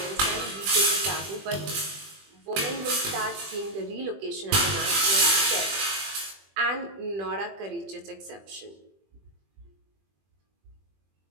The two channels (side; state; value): left; late; 20 ms